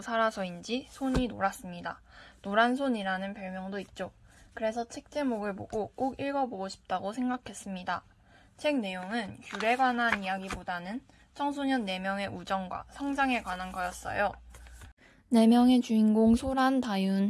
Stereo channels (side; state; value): both; identical; correlation 1.00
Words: 살아서인지 손이 노랗습니다. 노란손이라는 별명도 있죠. 그래서 책 제목을 보고 꼭 읽어보고 싶다고 생각했습니다. 책 내용은 귤에 관한 이야기보다는 청소년 4명의 우정과 성장에 관한 거였어요. 4명의 주인공 소란,